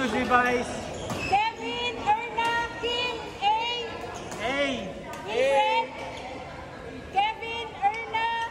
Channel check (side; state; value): both; identical; correlation 1.00